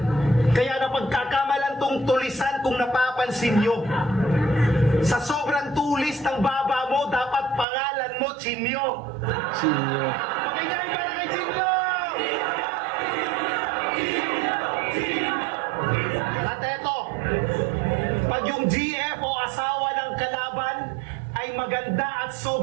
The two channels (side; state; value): left; drops out; at 7.7 s